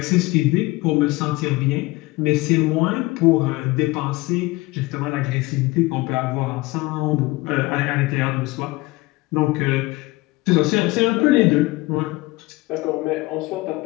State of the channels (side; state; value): right; quieter; 21.3 dB